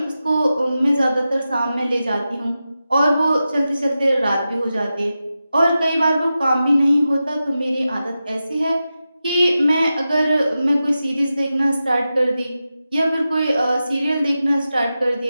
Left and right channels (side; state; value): both; inverted; correlation -0.92